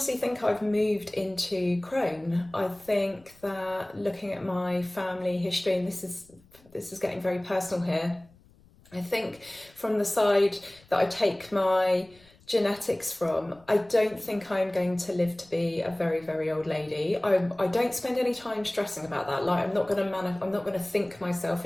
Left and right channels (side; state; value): left; noise; rumble, 28 dB below the sound